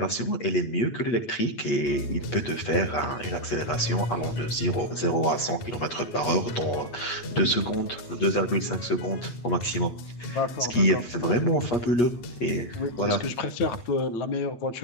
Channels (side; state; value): right; late; 8.4 ms